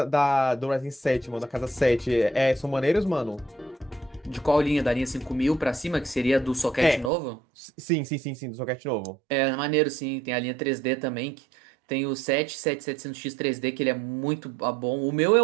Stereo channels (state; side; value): drops out; left; at 7.1 s